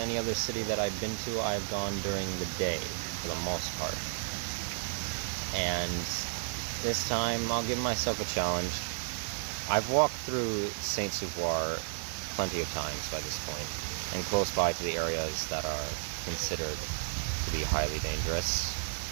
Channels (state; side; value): silent; left; 56 dB below the other